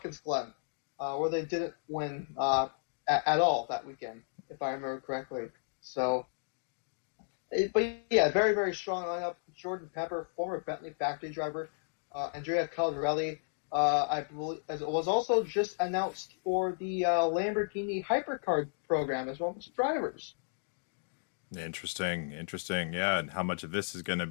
Glen, where they didn't win at all that weekend, if I remember correctly. So, but yeah, very, very strong lineup. Jordan Pepper, former Bentley factory driver. Andrea Caldarelli, I believe, as it was also just announced for the Lamborghini Hypercar program as well as drivers. Interesting. Yeah, and how much of this is going to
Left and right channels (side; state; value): right; silent; digital silence